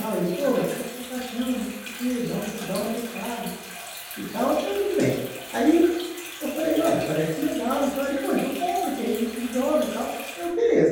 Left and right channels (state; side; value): identical; both; correlation 1.00